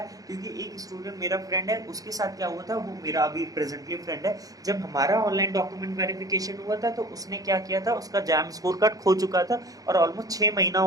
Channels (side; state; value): left; late; 0.17 ms